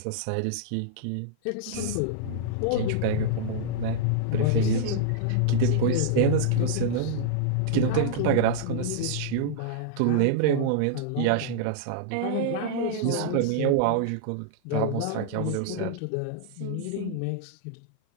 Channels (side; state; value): both; different; correlation -0.01